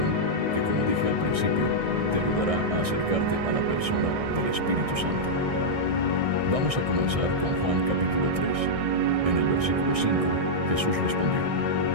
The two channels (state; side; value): late; left; 1.6 ms